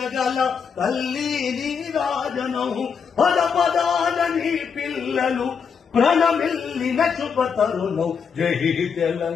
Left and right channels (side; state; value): right; quieter; 6.4 dB